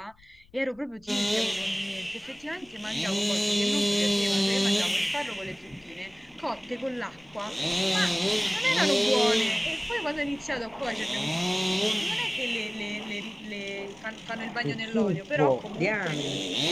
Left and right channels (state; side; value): noise; left; rumble, 28 dB below the sound